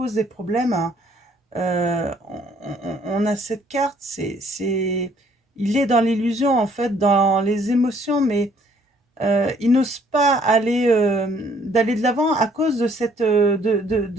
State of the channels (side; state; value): both; normal; correlation 0.63